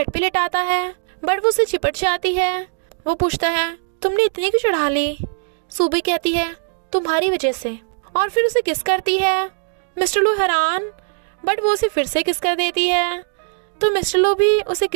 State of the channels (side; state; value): left; silent; digital silence